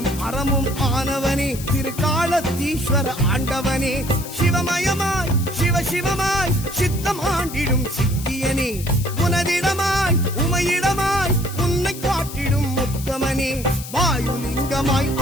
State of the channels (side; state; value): left; noise; hiss, 12 dB below the sound